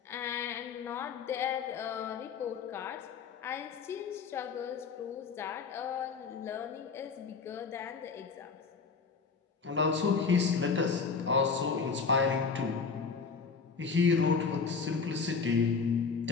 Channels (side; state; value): right; quieter; 5.3 dB